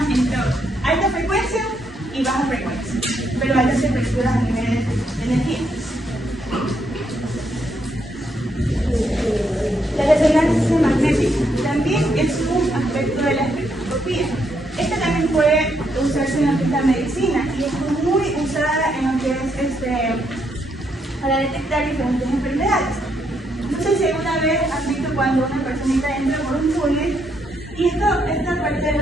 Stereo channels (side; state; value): both; normal; correlation 0.76